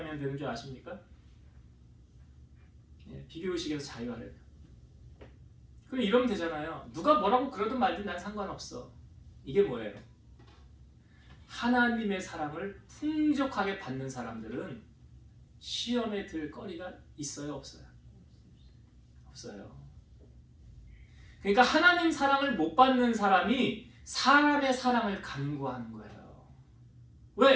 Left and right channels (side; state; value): both; identical; correlation 1.00